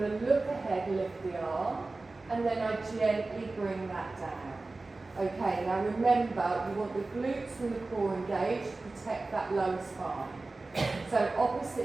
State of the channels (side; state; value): left; quieter; 3.4 dB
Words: look ahead, lift the arm, and then I gently bring that down. Okay, now remember, you want the glutes and the core engaged to protect that lower spine. So